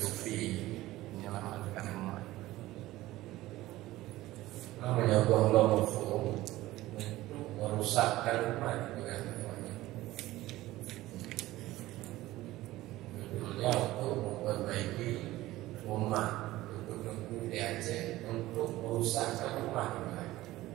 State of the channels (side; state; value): left; quieter; 16.9 dB